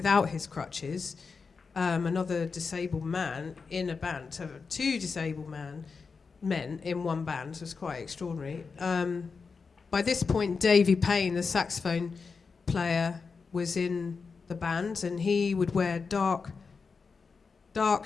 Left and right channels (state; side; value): quieter; right; 5.0 dB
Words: his crutches. Another disabled man in a band. To have two disabled men in one band was quite extraordinary. By this point, Davy Payne, the saxophone player, was in the band, and he would wear dark